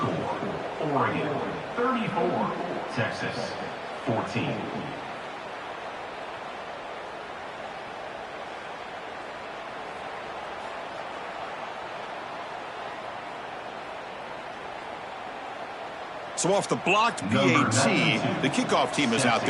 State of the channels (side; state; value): both; identical; correlation 1.00